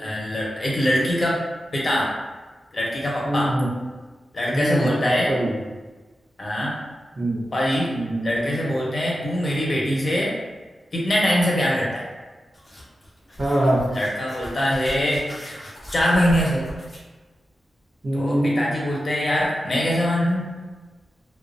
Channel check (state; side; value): normal; both; correlation 0.91